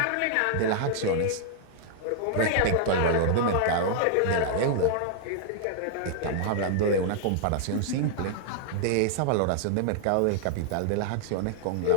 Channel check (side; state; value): both; different; correlation -0.01